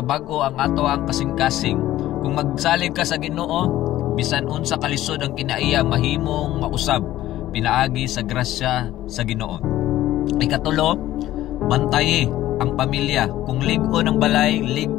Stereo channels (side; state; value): right; quieter; 14.4 dB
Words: ang ato ang kasing-kasing. Kung magsalig ka sa Ginoo, bisan unsa kalisod ang kinaiya mahimong mausab pinaagi sa grasya sa Ginoo. Ikatulo, bantayi ang pamilya. Kung lig-on ang balay,